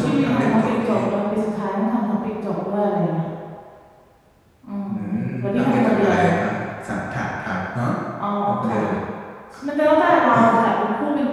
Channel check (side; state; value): both; identical; correlation 1.00